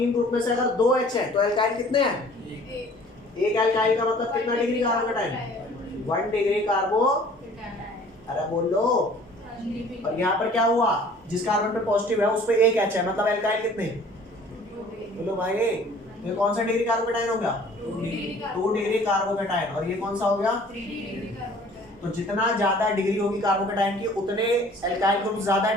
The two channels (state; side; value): normal; both; correlation 0.51